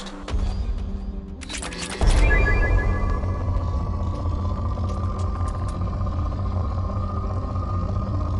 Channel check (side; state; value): both; identical; correlation 1.00